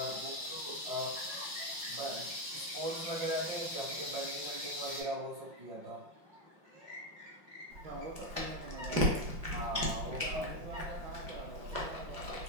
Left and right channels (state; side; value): late; left; 5.6 ms